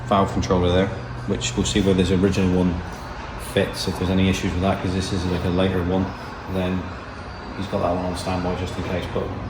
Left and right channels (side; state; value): both; identical; correlation 1.00